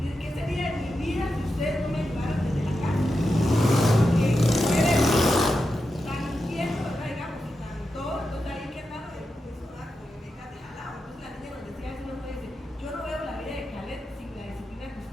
¿qué sería de mi vida si ustedes no me ayudaran desde la casa? Porque ustedes tan inquietos, ¿verdad? Digamos, y tan todo, entonces ahí que andando de eso, ¿verdad? Como me dejas de jalado. Entonces la niña nos decía eso, nos dice, yo no veo la vida de Caled sin la disciplina que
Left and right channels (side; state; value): both; normal; correlation 0.89